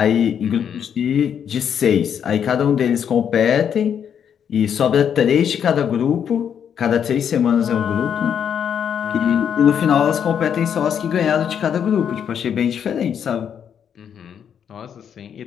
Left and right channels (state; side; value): quieter; right; 8.2 dB